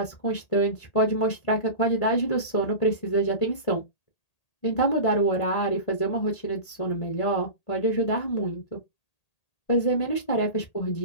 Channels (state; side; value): late; right; 1.8 ms